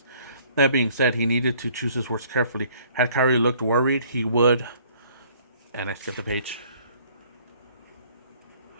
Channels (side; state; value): both; inverted; correlation -0.58